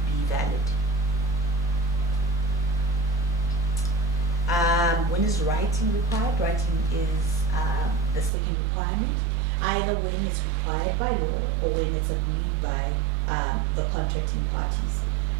valid. When is writing required? Writing is the second requirement, either when it's required by law or when it's agreed by the contracting parties.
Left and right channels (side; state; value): left; drops out; at 8.3 s